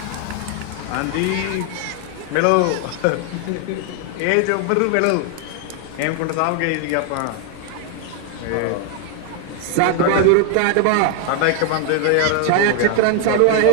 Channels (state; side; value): different; both; correlation 0.01